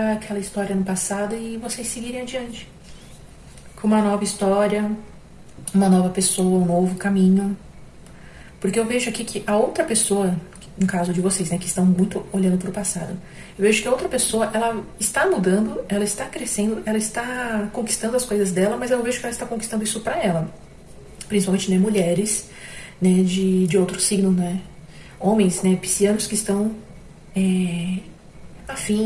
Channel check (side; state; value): both; identical; correlation 1.00